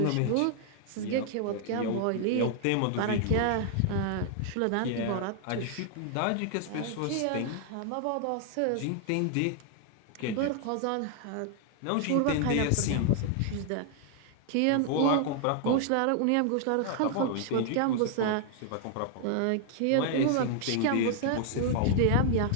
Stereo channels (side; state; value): both; different; correlation 0.00